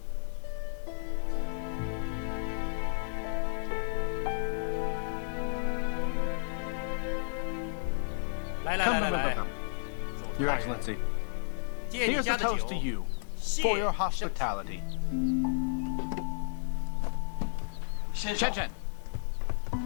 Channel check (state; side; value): silent; right; 56 dB below the other